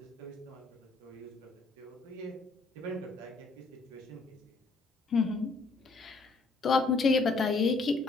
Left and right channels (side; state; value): right; quieter; 3.7 dB